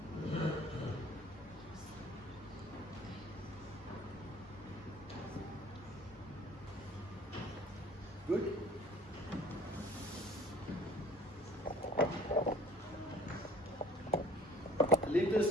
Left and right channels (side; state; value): both; normal; correlation 0.51